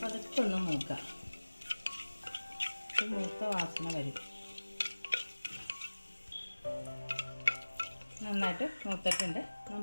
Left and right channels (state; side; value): inverted; both; correlation -1.00